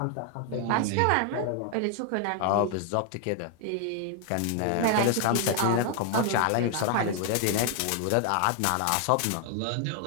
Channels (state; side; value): different; both; correlation 0.00